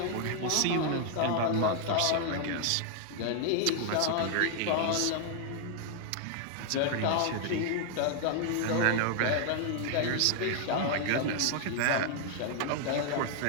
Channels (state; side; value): different; both; correlation 0.00